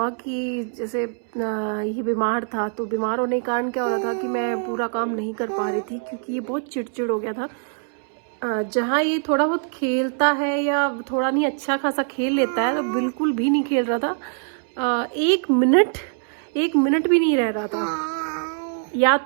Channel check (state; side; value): silent; left; 63 dB below the other